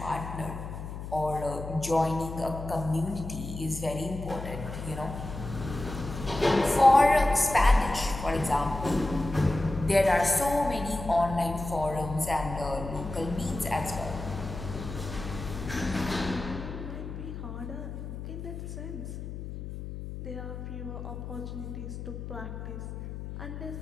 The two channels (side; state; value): left; noise; hum, 8 dB below the sound